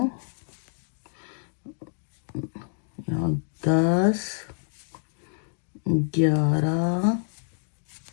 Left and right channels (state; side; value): silent; right; digital silence